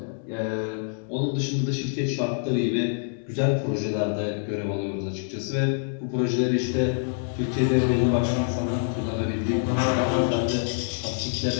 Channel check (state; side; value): silent; right; digital silence